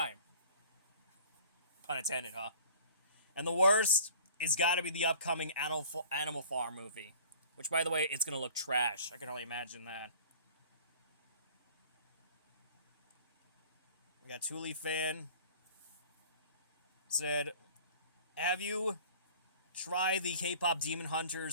Pun intended, huh? And the worst is gotta be the upcoming Animal Farm movie. Which, by the way, it's gonna look trash. I can only imagine that. We got Thule Fan. Said, have you tried the K-pop Demon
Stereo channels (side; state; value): both; inverted; correlation -0.47